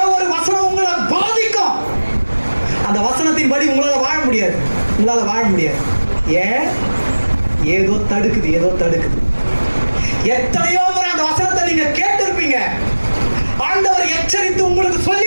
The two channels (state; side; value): inverted; both; correlation -1.00